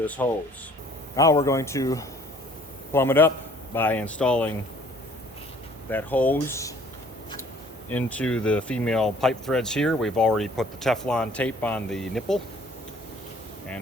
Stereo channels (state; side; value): normal; both; correlation 0.55